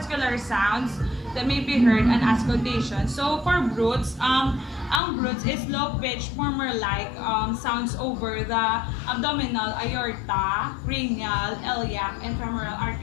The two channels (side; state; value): right; drops out; at 5.0 s